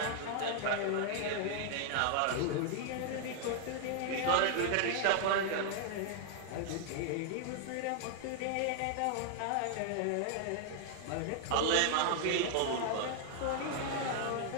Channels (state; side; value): different; both; correlation 0.00